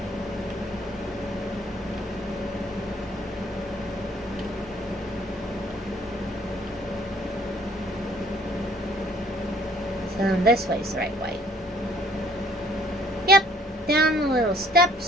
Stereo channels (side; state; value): both; normal; correlation 0.60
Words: So this way's the right way. Yep, down the little